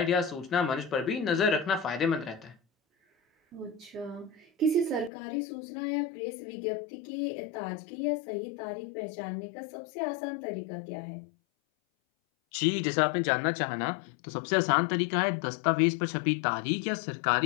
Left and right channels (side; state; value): right; drops out; at 5.1 s